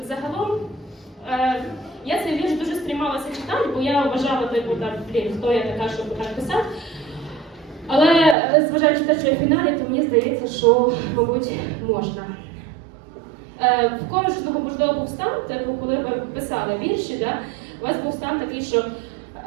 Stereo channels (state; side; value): drops out; left; at 8.3 s